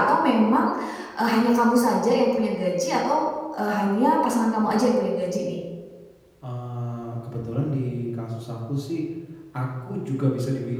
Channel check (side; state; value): both; identical; correlation 1.00